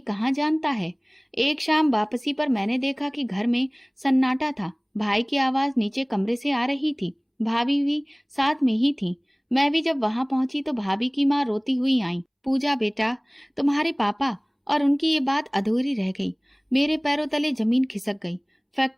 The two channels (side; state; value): both; identical; correlation 1.00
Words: कहाँ जानता है। एक शाम वापसी पर मैंने देखा कि घर में सन्नाटा था। भाई की आवाज नीचे कमरे से आ रही थी। भाभी भी साथ में ही थी। मैं भी जब वहां पहुंची तो भाभी की माँ रोती हुई आई, पूजा बेटा, तुम्हारे पापा। और उनकी ये बात अधूरी रह गई। मेरे पैरों तले जमीन खिसक गई।